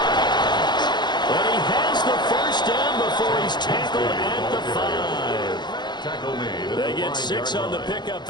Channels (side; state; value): right; late; 0.21 ms